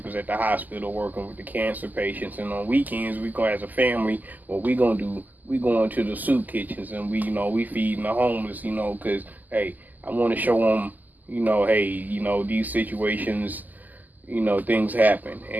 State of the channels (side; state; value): left; late; 0.083 ms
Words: at the hospital working with the cancer patients, and on weekends we go as a family. What we gonna do? We going to the soup kitchens and we feeding the homeless, cause hey, I want to show them, hey, these situations, things happen.